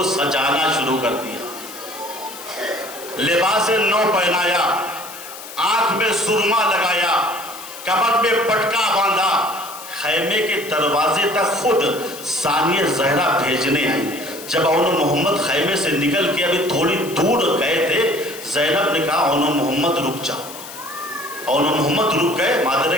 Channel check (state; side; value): noise; left; hiss, 14 dB below the sound